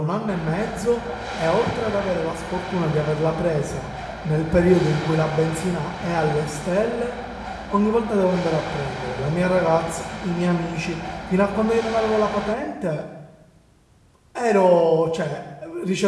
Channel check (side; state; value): both; identical; correlation 1.00